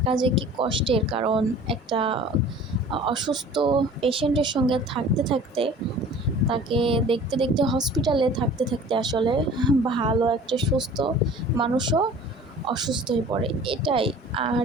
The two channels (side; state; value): both; normal; correlation 0.45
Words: যে কি কষ্টের, কারণ একটা অসুস্থ পেশেন্টের সঙ্গে থাকতে থাকতে, তাকে দেখতে দেখতে, হসপিটালে থাকতে থাকতে আসলে ভালো একটা সুস্থ মানুষও অসুস্থ হয়ে পড়ে, এটাই। আর